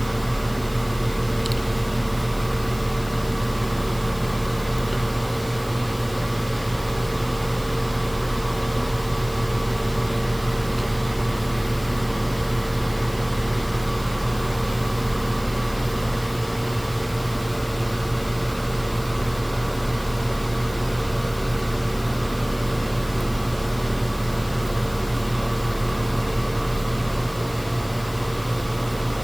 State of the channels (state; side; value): noise; left; hiss, 19 dB below the sound